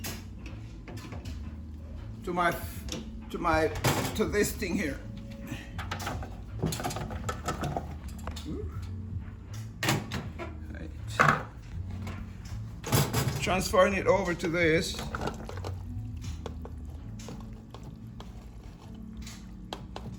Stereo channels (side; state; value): both; identical; correlation 1.00